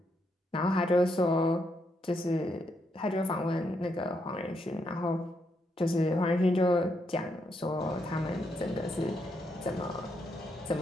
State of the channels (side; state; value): both; normal; correlation 0.78